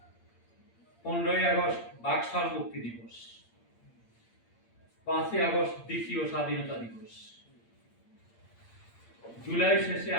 15 আগস্ট বাকশাল মুক্তি দিবস, 5 আগস্ট দ্বিতীয় স্বাধীনতা দিবস। জুলাই শেষে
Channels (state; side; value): late; right; 8.7 ms